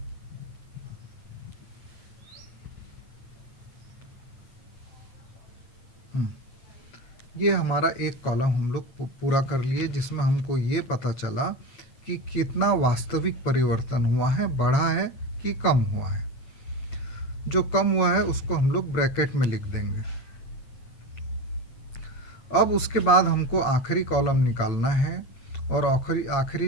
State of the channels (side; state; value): right; late; 8.8 ms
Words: ये हमारा एक कॉलम हम लोग पूरा कर लिए, जिसमें हमको ये पता चला कि कितना वास्तविक परिवर्तन हुआ है, बढ़ा है कि कम हुआ है। जो कम हुआ है उसको हम लोग ब्रैकेट में लिख देंगे। अब उसके बाद हमको आखिरी कॉलम निकालना है, और आखिरी